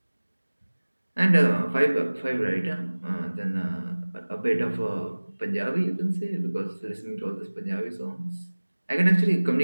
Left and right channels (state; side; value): inverted; both; correlation -1.00